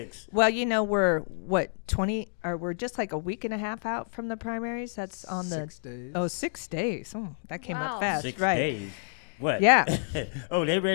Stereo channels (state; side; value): silent; right; digital silence